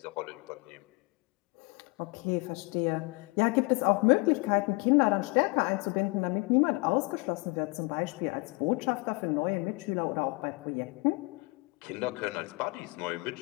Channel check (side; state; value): right; quieter; 28.0 dB